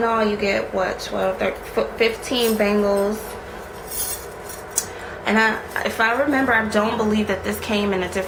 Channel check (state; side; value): identical; both; correlation 1.00